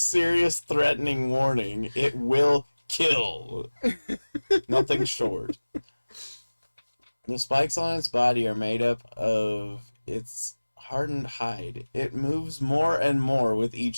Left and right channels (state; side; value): inverted; both; correlation -1.00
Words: threatening warning. It will kill. Nothing short. The spikes on its body are made up of its hardened hide. It moves more and more with